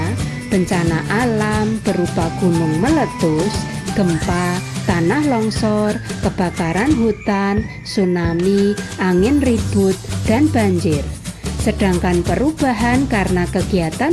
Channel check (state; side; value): identical; both; correlation 1.00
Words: bencana alam berupa gunung meletus, gempa, tanah longsor, kebakaran hutan, tsunami, angin ribut, dan banjir. Sedangkan perubahan karena